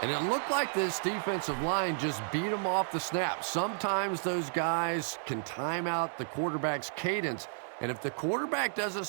it looked like this defensive line just beat him off the snap. Sometimes those guys can time out the quarterback's cadence. And if the quarterback doesn't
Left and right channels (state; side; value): silent; left; 56 dB below the other